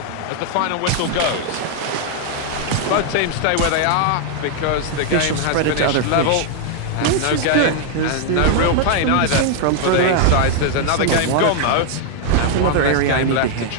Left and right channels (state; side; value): different; both; correlation 0.00